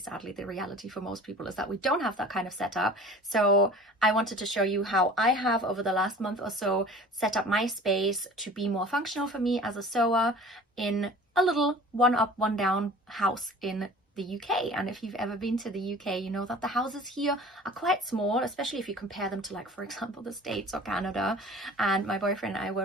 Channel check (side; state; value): both; normal; correlation 0.44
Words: the reality for most people is that we don't have that kind of setup. So I wanted to show you how I have over the last month or so set up my space to be more functional for me as a sewer in a little one up one down house in the UK. And if you've ever been to the UK, you know that the houses here are quite small, especially if you compare them to, like, for example, the States or Canada. And my boyfriend and I were